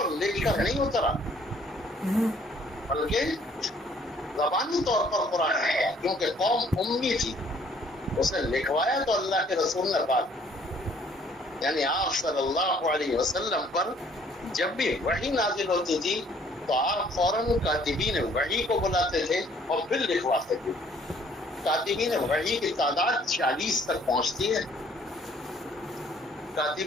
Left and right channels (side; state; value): both; normal; correlation 0.60